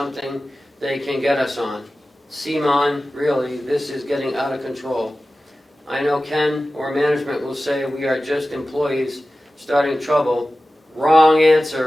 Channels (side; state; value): both; normal; correlation 0.95